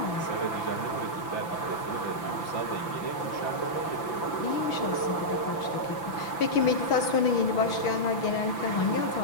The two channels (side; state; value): right; late; 5.9 ms